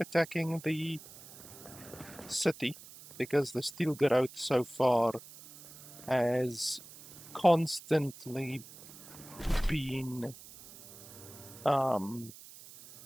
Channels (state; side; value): noise; right; hiss, 17 dB below the sound